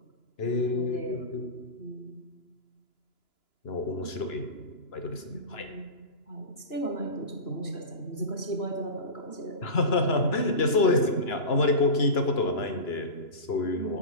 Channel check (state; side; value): late; right; 2.9 ms